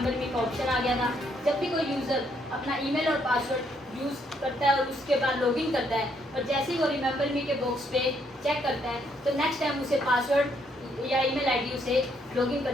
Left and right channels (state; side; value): normal; both; correlation 0.71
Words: मी का ऑप्शन आ गया था। जब भी कोई यूज़र अपना ईमेल और पासवर्ड यूज़ करता है और उसके बाद लॉगिन करता है और जैसे ही वो रिमेंबर मी के बॉक्स पे चेक करता है, तो नेक्स्ट टाइम उसे पासवर्ड या ईमेल आईडी उसे लॉगिन